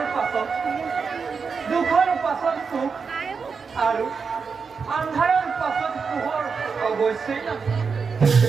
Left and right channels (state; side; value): quieter; left; 5.4 dB